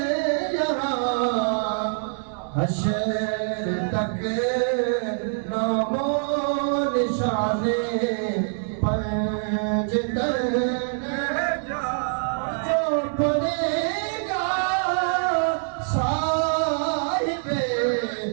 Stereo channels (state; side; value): silent; left; digital silence